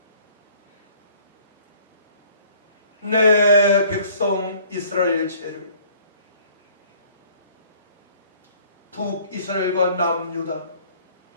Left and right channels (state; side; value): inverted; both; correlation -0.56